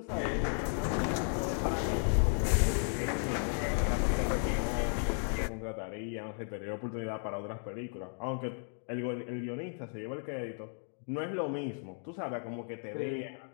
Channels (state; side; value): silent; right; 55 dB below the other